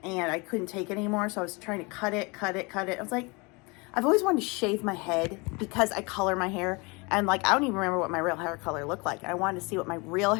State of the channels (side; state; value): right; quieter; 28.0 dB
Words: and I couldn't take it anymore. So I was trying to cut it. I was like, I've always wanted to shave my head because I color my hair. And like, I don't even remember what my real hair color looked like. I wanted to see what my real